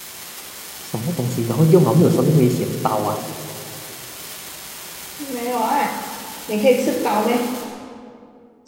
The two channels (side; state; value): both; identical; correlation 1.00